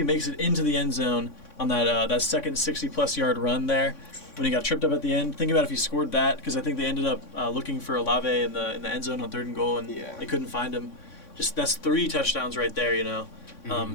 makes it into the end zone on that second 60-plus yard run there, when he got tripped up at the end, think about if he scored that, because I think they ended up looking for Olave in the end zone on 3rd and goal, and they couldn't find him. Just that's 3 touchdowns right there,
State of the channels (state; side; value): late; right; 3.6 ms